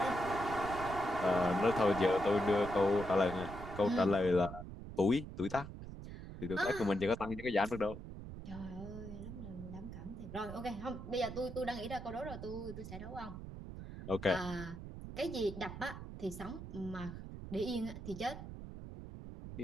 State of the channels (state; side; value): noise; right; rumble, 10 dB below the sound